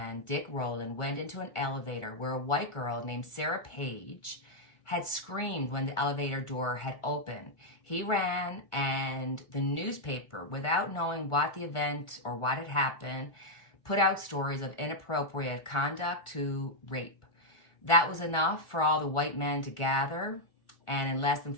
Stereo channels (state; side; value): late; right; 1.4 ms